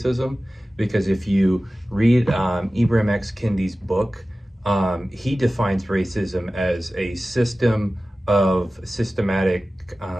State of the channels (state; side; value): normal; both; correlation 0.96